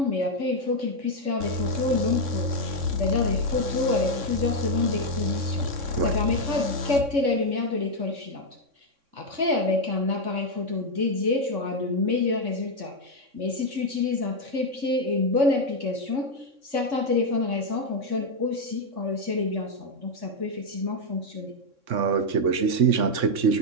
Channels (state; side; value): late; left; 3.6 ms